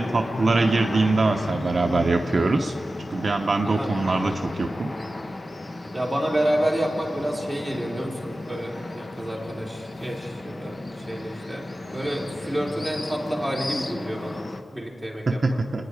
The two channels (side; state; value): both; normal; correlation 0.95